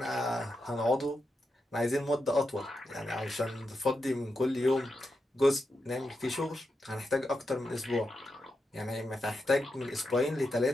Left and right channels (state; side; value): normal; both; correlation 0.87